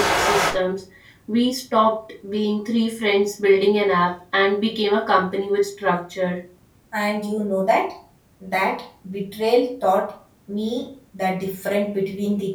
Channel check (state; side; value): identical; both; correlation 1.00